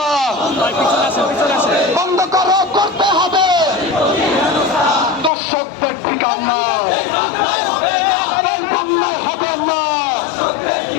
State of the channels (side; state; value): right; drops out; at 5.3 s